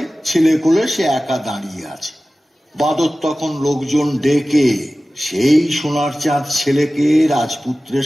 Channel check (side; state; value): both; normal; correlation 0.96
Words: ছেলে কোলে সে একা দাঁড়িয়ে আছে। বাঁদর তখন লোকজন ডেকে সেই সোনার চাঁদ ছেলেকে রাজপুত্রের